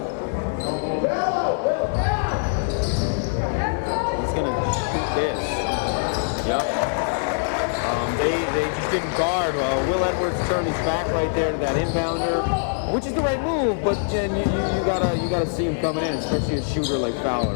This. Yep. They just didn't guard. Will Edwards turned his back right there to that inbounder, which is the right move. But then you gotta see him coming in, especially a shooter like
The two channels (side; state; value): right; silent; 58 dB below the other